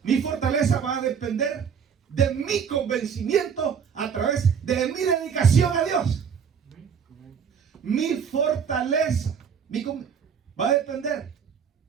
va a depender de mi convencimiento a través de mi dedicación a Dios. Mi fortaleza va a depender.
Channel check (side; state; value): left; quieter; 7.1 dB